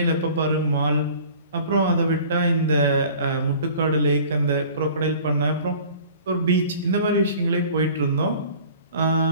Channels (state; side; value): inverted; both; correlation -0.47